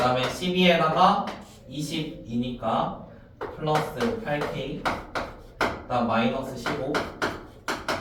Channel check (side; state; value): both; identical; correlation 1.00